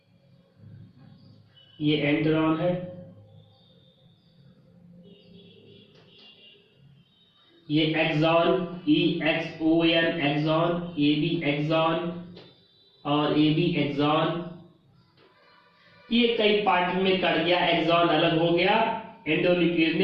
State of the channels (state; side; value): identical; both; correlation 1.00